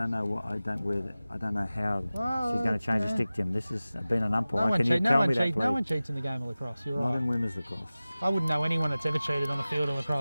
know what. I don't know how she's going to change the stick, Jim. This has been an umpire. Can you tell me that, please? No one cheats in the game of lacrosse. You're right. Not in women's lacrosse. I wouldn't know anyone that's ever cheated on the field of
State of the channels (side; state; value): both; inverted; correlation -0.97